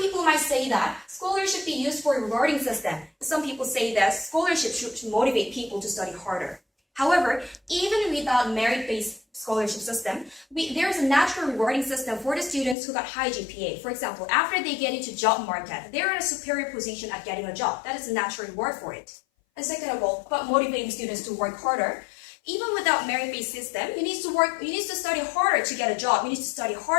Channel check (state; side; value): drops out; right; at 12.8 s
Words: might say that scholarship should be used for a rewarding system. Some people say that scholarship should motivate people to study harder. However, even without merit-based scholarship system, there is a natural rewarding system for the students who got high GPA. For example, after they get into job market, they're in a superior position at getting a job. That is a natural reward for it. And second of all, about motivating students to work harder, even without merit-based system, you need to study harder to get a job. You need to study